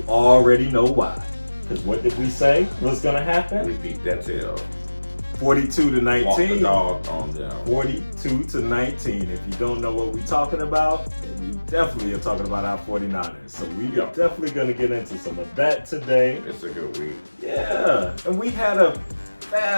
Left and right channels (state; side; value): inverted; both; correlation -1.00